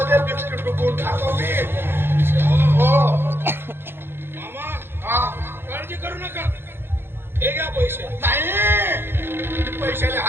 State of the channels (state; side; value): late; left; 0.11 ms